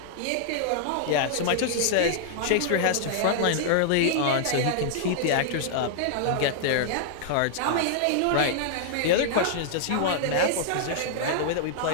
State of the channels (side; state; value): both; different; correlation -0.01